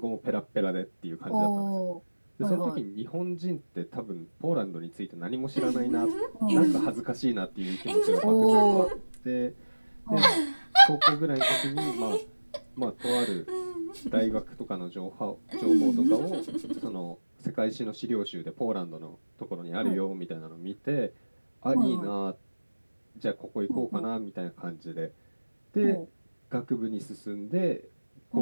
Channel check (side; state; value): both; inverted; correlation -1.00